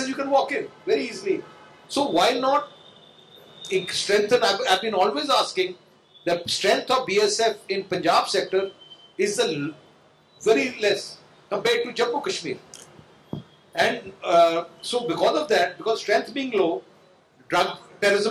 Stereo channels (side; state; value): both; identical; correlation 1.00